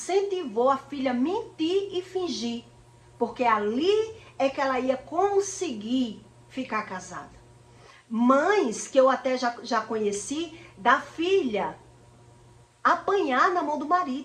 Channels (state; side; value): identical; both; correlation 1.00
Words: a filha a mentir e fingir. Porque ali é que ela ia conseguir ficar casada. Mães que eu até já conheci, da filha apanhar na mão do